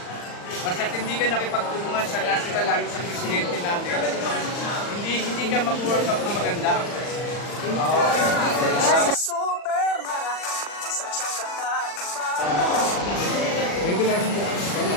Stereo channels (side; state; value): right; late; 40 ms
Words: basta hindi ka nakipagtulungan sa national, lalo sa presidente natin, hindi ka mag-work out na maganda. Maybe namin po.